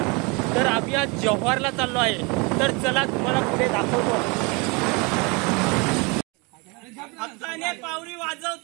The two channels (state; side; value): quieter; left; 29.2 dB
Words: तर आम्ही आज जव्हारला चाललो आहे, तर चला तुम्हाला पुढे दाखवतो। हक्काने पावरी